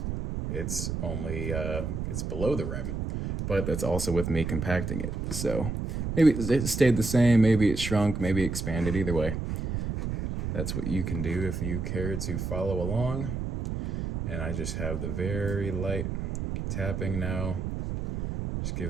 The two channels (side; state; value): right; noise; rumble, 3 dB below the sound